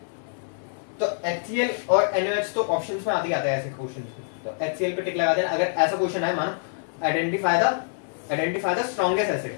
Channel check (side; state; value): right; silent; digital silence